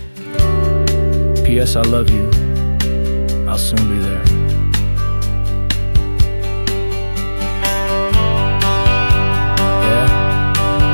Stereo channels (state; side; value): inverted; both; correlation -1.00